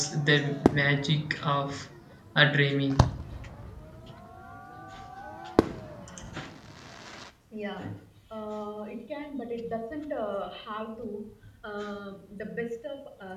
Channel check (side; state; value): both; identical; correlation 1.00